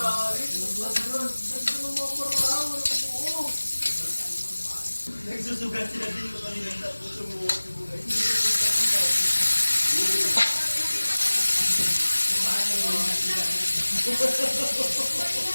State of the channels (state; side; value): inverted; both; correlation -1.00